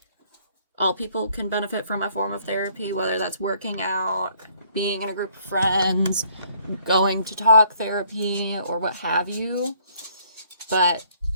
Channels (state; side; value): inverted; both; correlation -0.63